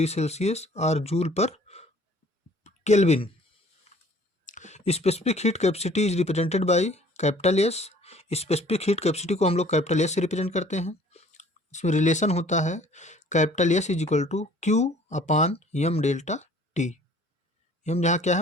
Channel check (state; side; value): normal; both; correlation 0.54